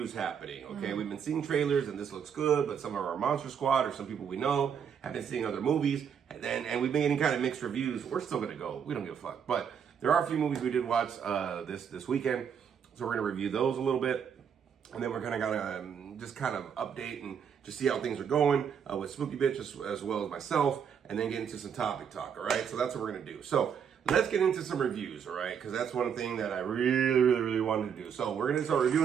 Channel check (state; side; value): quieter; left; 7.6 dB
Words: happening. Okay, we've been seeing trailers and this looks good, but some of our Monster Squad or some people we know have been seeing other movies, and we've been getting kind of mixed reviews. We're still gonna go. We don't give a fuck. But there are a few movies we did watch this weekend, so we're gonna review those a little bit, and then we're gonna just kind of update and just see how things are going with Spooky Bitch as well as myself, and then get into some topic talk. All right, so that's what we're gonna do. So let's get into some reviews, all right? Because that's one thing that I really wanted to do. So we're gonna start